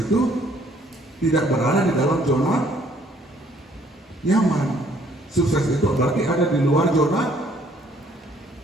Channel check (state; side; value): normal; both; correlation 0.63